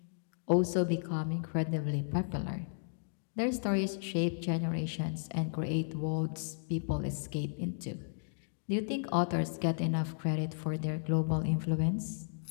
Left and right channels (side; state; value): right; silent; digital silence